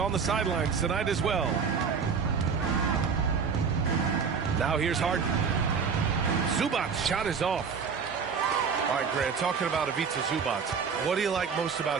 the sidelines tonight as well. Now here's Harden. Zubac's shot is off. All right, Grant, talking about Ivica Zubac, what do you like most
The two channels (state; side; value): quieter; left; 6.0 dB